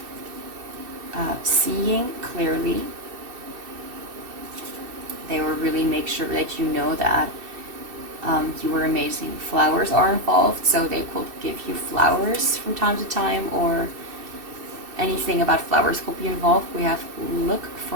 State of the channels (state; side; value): late; left; 2.6 ms